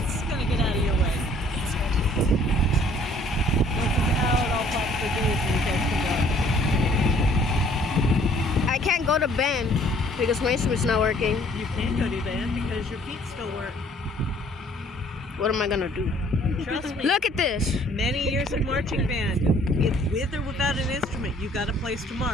gonna get out of your way. Once it's out, I'll pop the doors and you guys can go. I can't go to band because my instrument's not working. You can't go to band because your feet still work. What am I gonna do? Trust me. Look at this. Many years of marching band. If with or without an instrument, you got a place to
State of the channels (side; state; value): both; normal; correlation 0.58